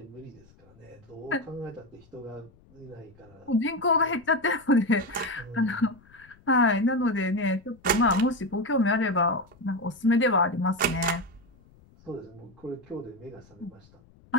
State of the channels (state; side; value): noise; left; rumble, 28 dB below the sound